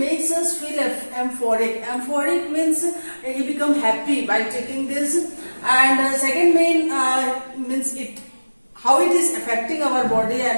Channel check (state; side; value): inverted; both; correlation -1.00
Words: us feel euphoric. Euphoric means you become happy by taking this. And second main means how it is affecting our body,